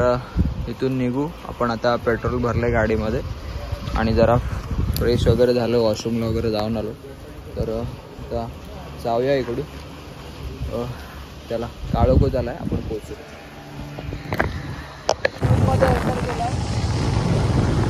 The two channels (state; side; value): identical; both; correlation 1.00